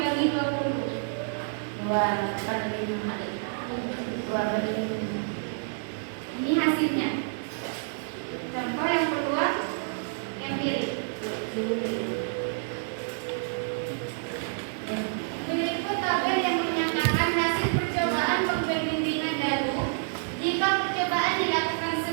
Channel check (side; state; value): left; silent; digital silence